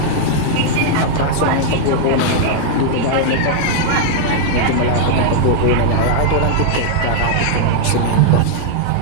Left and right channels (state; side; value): different; both; correlation -0.01